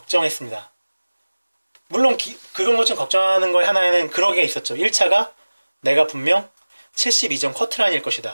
물론 그런 것 좀 걱정하는 거에 하나에는 그런 게 있었죠. 1차가 내가 분명 72점 커트라인일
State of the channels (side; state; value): both; inverted; correlation -1.00